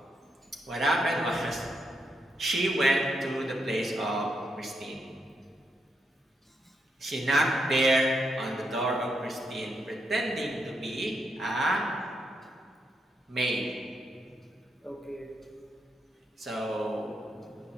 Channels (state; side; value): normal; both; correlation 0.81